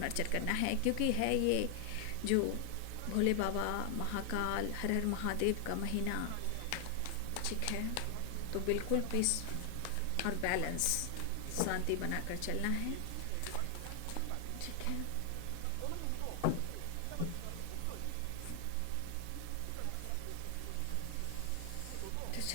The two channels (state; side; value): different; both; correlation 0.00